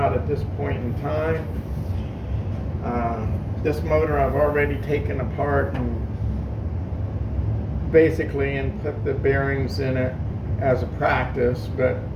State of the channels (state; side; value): identical; both; correlation 1.00